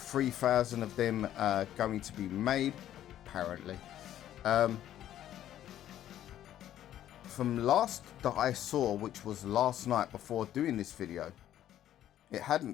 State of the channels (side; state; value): right; quieter; 11.8 dB